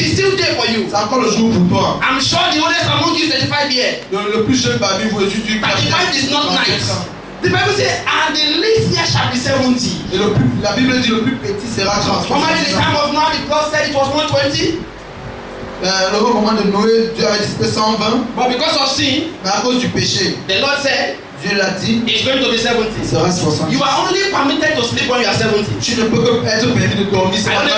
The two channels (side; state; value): both; identical; correlation 1.00